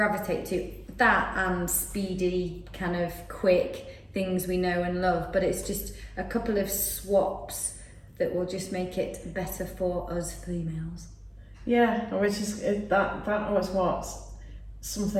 to. That and speedy, kind of quick things we know and love, but it's just a couple of swaps that will just make it better for us females. Yeah, which is that was what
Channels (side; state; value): both; identical; correlation 1.00